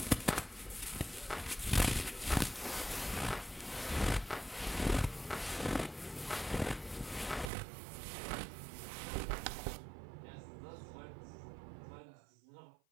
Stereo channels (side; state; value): left; drops out; at 7.5 s